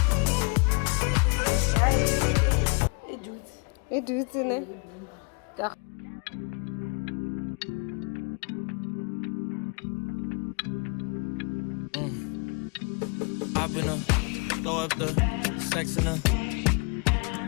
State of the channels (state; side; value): quieter; right; 33.2 dB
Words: it do it, Hop in her, throw up the sex in her.